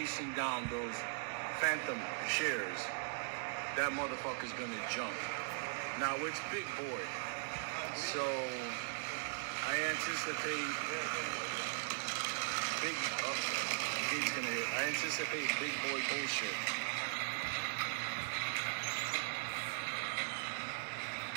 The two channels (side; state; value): left; silent; digital silence